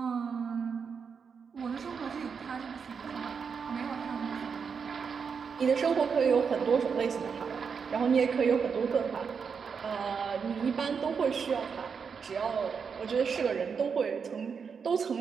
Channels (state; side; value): quieter; left; 6.1 dB